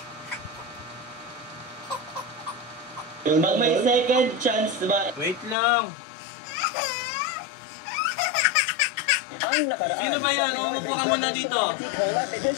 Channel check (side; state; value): right; drops out; at 5.6 s